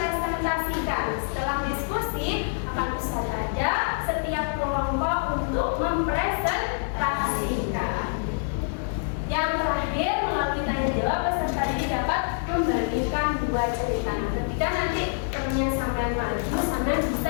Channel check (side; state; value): right; silent; digital silence